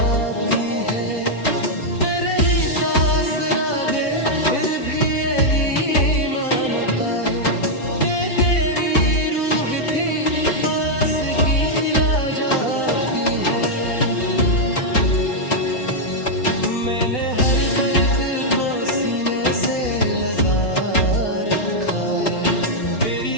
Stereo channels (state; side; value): late; right; 4.1 ms